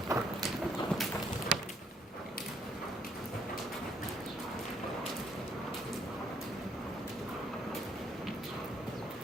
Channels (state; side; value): normal; both; correlation 0.68